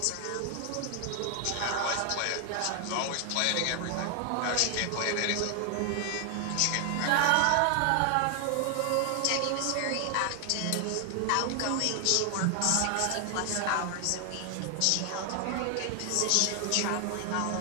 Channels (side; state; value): both; different; correlation 0.00